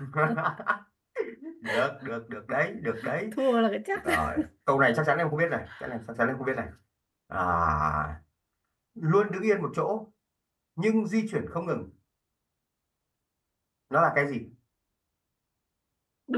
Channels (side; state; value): both; identical; correlation 1.00